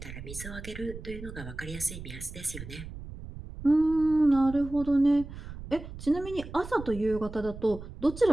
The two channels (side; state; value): right; noise; rumble, 12 dB below the sound